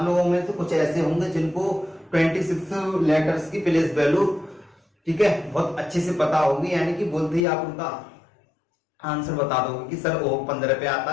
लोगों में से कुछ ऐसे होंगे जिनको 26 लेटर्स की प्लेस वैल्यू, ठीक है, बहुत अच्छे से पता होगी। यानी कि बोलते ही आप उनका आंसर बता दोगे कि सर ओ 15 पे आता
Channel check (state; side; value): drops out; right; at 7.5 s